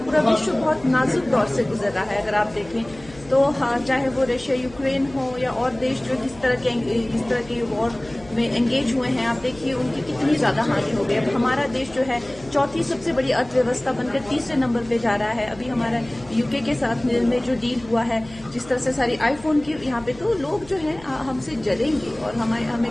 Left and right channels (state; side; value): noise; left; hum, 20 dB below the sound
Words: पूरा विश्व बहुत नाजुक दौर से गुजर रहा है। अगर आप देखें तो हाँ, चाहे वो रशिया यूक्रेन हो या और देश जो इस तरह के वॉर में एंगेज हुए हैं, आप देखिए उनकी कितनी ज्यादा हानि हो गई। अब हमारा देश जो है चौथी सबसे बड़ी अर्थव्यवस्था बनकर तीसरे नंबर पे जा रहा है। अभी हमारा यूके के साथ में जो डील हुआ है, जिस तरह से सारी आईफोन की यहाँ पे, तो लोग जो है हमसे जलेंगे और